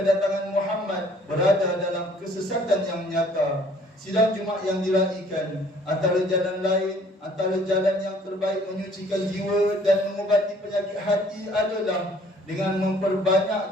Muhammad berada dalam kesesatan yang nyata. Sidang Jumaat yang diraikan, antara jalan yang terbaik menyucikan jiwa dan mengubati penyakit hati adalah dengan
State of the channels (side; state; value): both; normal; correlation 0.57